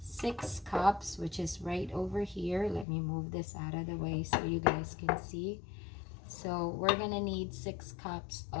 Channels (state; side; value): drops out; right; at 2.9 s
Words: cups, which is right over here. Let me move this out of the way so you guys can see. So we're gonna need 6 cups